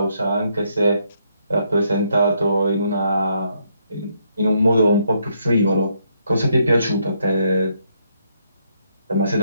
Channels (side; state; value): both; inverted; correlation -0.74